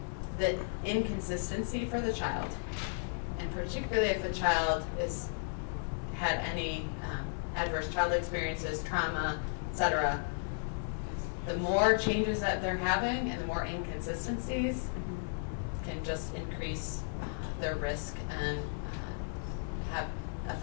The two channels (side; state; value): right; silent; digital silence